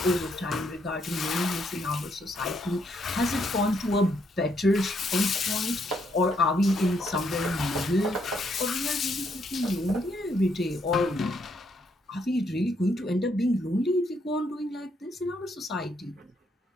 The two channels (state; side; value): normal; both; correlation 0.74